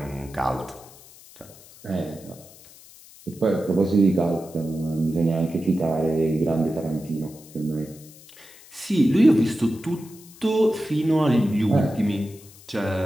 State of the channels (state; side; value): noise; left; hiss, 22 dB below the sound